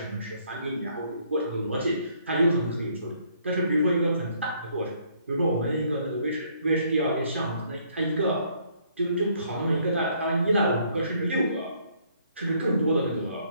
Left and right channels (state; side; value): inverted; both; correlation -0.66